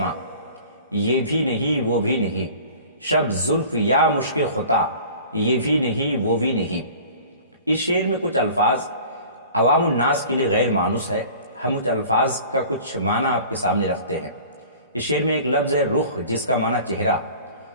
یہ بھی نہیں وہ بھی نہیں، شب زلف یا مشک خطا یہ بھی نہیں وہ بھی نہیں۔ اس شعر میں کچھ الفاظ عوام الناس کے لیے غیر مانوس ہے، ہم کچھ الفاظ کا کچھ معنی آپ کے سامنے رکھتے ہیں۔ اس شعر میں ایک لفظ ہے رخ، جس کا معنی چہرہ،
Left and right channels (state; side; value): inverted; both; correlation -0.44